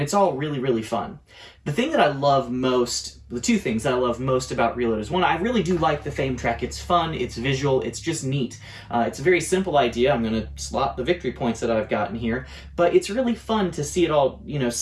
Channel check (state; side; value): identical; both; correlation 1.00